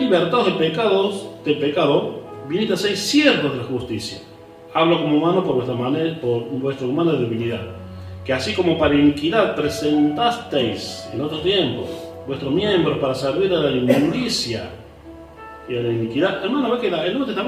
del pecado, viniste a ser siervos de la justicia. Hablo como humano por vuestra humana debilidad, que así como para iniquidad presentasteis en otro tiempo vuestros miembros para servir a la inmundicia y a la iniquidad. Hermano, ve que el Nuevo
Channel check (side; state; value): both; identical; correlation 1.00